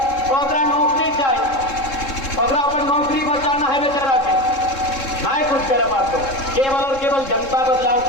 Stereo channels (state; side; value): late; right; 3.7 ms